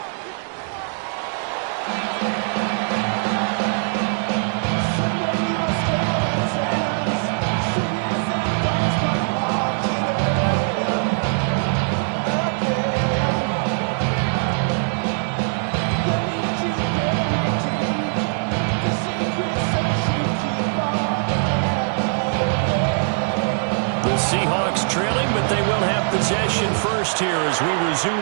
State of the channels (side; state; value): left; silent; 64 dB below the other